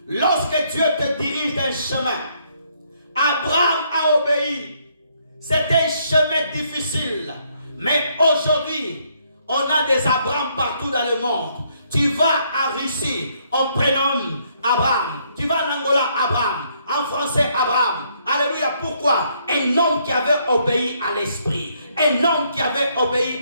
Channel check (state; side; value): inverted; both; correlation -0.70